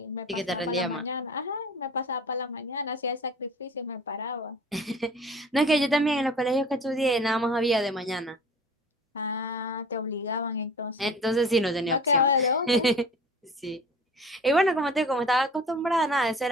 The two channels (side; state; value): both; normal; correlation 0.43